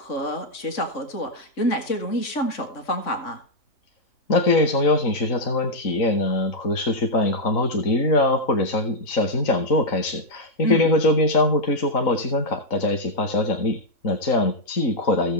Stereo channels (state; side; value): late; right; 3.6 ms